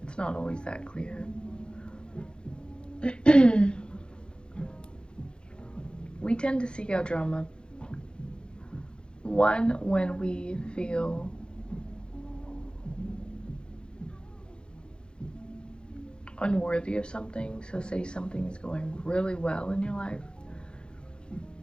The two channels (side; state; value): right; late; 0.051 ms